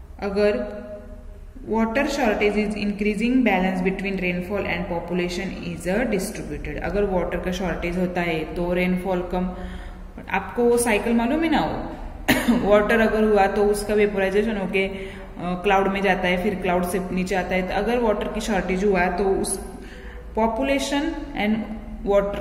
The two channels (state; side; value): identical; both; correlation 1.00